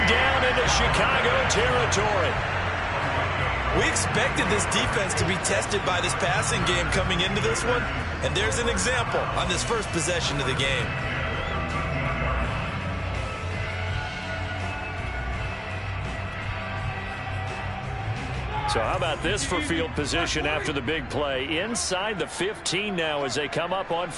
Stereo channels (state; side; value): identical; both; correlation 1.00